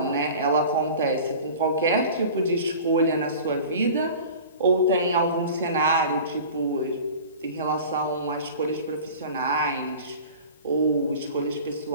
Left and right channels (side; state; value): both; inverted; correlation -0.39